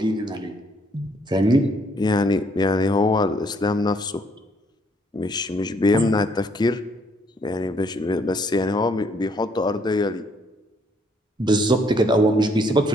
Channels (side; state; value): both; normal; correlation 0.67